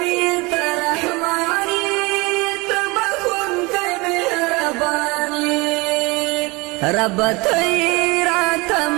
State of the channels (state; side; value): quieter; left; 24.9 dB